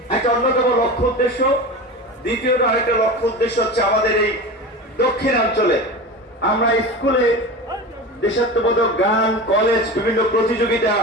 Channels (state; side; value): normal; both; correlation 0.29